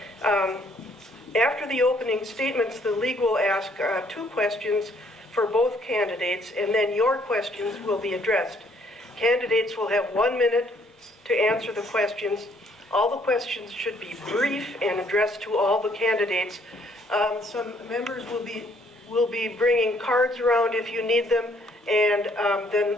After the opening statements, the league will ask 2 questions for both candidates, and then your questions will be addressed. Candidates will have 1 minute to answer the questions. All the questions should be brief and addressed to all the candidates. Some members will be bringing cards around if you need them, and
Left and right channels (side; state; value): both; normal; correlation 0.65